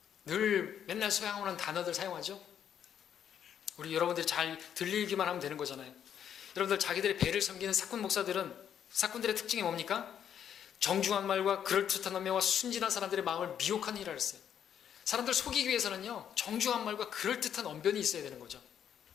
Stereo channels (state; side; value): quieter; right; 9.1 dB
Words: 늘 맨날 사용하는 단어들 사용하죠. 우리 여러분들이 잘 들리기만 하면 되는 거잖아요. 여러분들 자기들의 배를 섬기는 사꾼 목사들은, 사꾼들의 특징이 뭡니까? 정중한 말과 그럴듯한 언명과 순진한 사람들의 마음을 미혹하는 일을 했어요. 사람들 속이기 위해서는요, 정중한 말과 그럴듯한 언변이 있어야 되는 거죠.